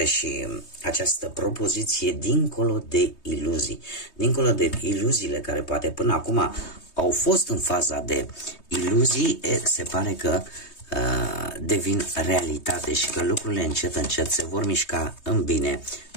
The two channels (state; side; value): late; right; 3.2 ms